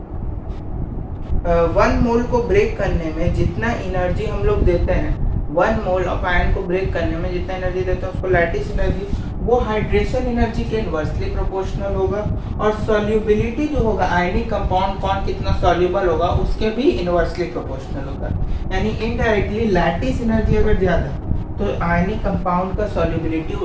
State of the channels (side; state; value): both; identical; correlation 1.00